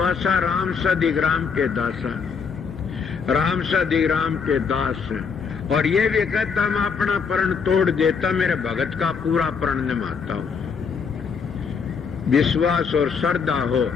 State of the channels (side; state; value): right; quieter; 5.9 dB